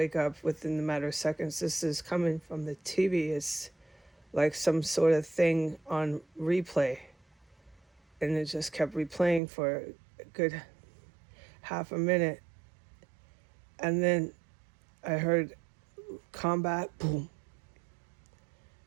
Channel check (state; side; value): drops out; left; at 9.4 s